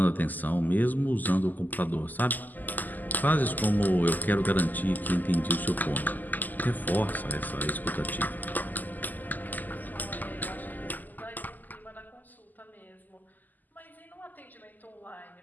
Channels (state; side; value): late; right; 0.084 ms